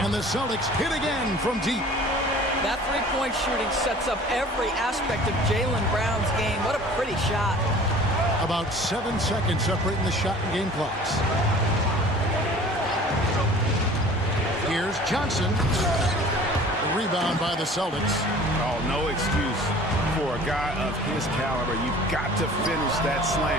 And the Celtics hit again from deep. That three-point shooting sets up every aspect of Jaylen Brown's game. What a pretty shot. About 7 seconds separating the shot and game clocks. Here's Johnson. The rebound by the Celtics. Oh, no excuse for a guy of his caliber. You've got to finish that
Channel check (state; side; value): normal; both; correlation 0.46